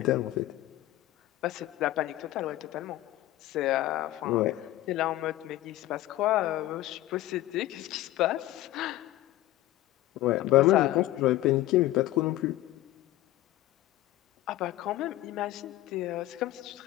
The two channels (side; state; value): right; quieter; 15.7 dB